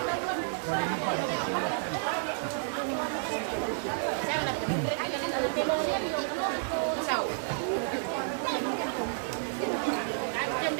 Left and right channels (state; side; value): silent; left; digital silence